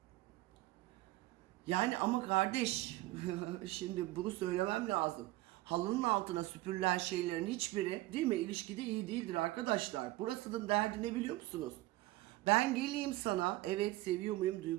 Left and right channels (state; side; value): quieter; left; 18.2 dB